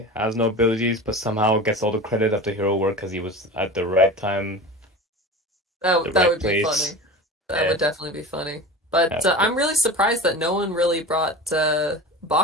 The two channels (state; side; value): normal; both; correlation 0.32